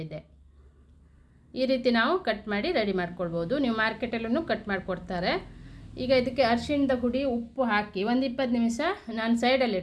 ಈ ರೀತಿ ನಾವು ಕಟ್ ಮಾಡಿ ರೆಡಿ ಮಾಡ್ಕೊಳ್ಬೋದು. ನೀವು ಮಾರ್ಕೆಟಲ್ಲೂ ಕಟ್ ಮಾಡಿಕೊಡ್ತಾರೆ. ಈಗ ಇದಕ್ಕೆ ಅರಿಶಿಣದ ಹುಡಿ, ಉಪ್ಪು ಹಾಕಿ ಒಂದು 20 ನಿಮಿಷ ನಾನು ಸೈಡಲ್ಲಿ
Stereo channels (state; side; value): identical; both; correlation 1.00